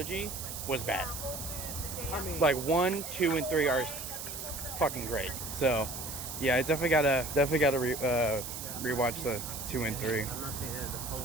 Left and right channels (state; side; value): noise; right; hiss, 7 dB below the sound